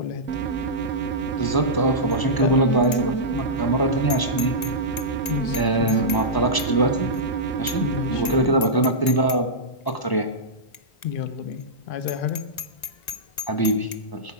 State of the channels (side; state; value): right; late; 1.9 ms